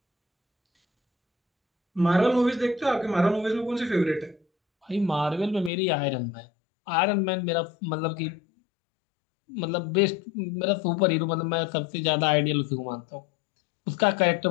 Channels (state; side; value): drops out; right; at 5.7 s